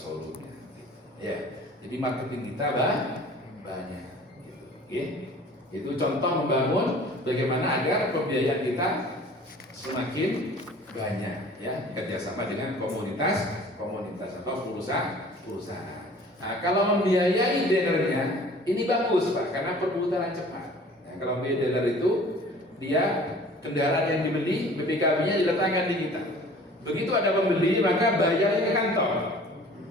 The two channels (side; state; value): both; normal; correlation 0.47